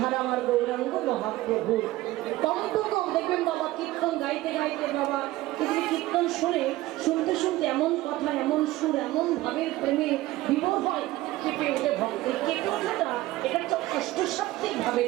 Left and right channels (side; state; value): left; quieter; 17.3 dB